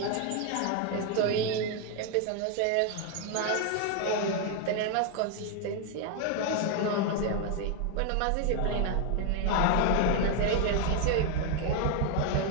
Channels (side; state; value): both; different; correlation 0.01